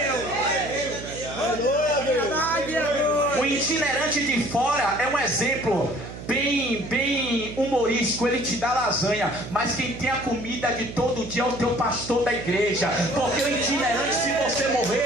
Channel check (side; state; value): right; noise; hum, 11 dB below the sound